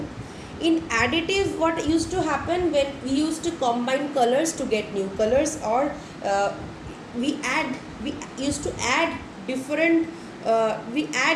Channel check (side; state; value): both; identical; correlation 1.00